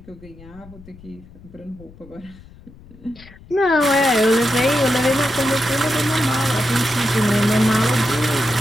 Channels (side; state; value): left; noise; rumble, 22 dB below the sound